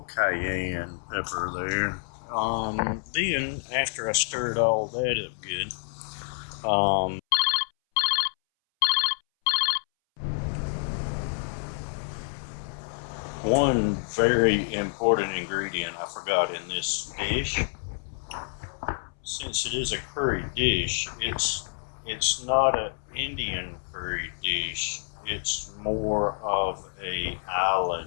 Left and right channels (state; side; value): silent; right; 59 dB below the other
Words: cayenne pepper there. Then after I stirred all that up good, one very important ingredient I forgot in this dish. Since it is a curry dish, it's not an Indian curry dish. It's more of a